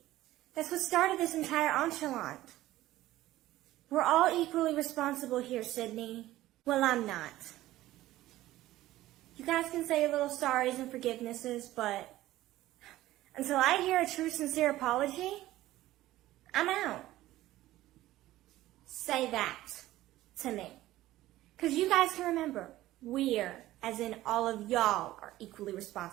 That's what started this entire enchilada. We're all equally responsible here, Sydney. Well, I'm not. You guys can say little sorries and forgivenesses, but until I hear a true, sincere apology, I'm out. Say that to me. Because you guys can remember, we're, as in all of y'all, are equally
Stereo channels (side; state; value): left; quieter; 15.7 dB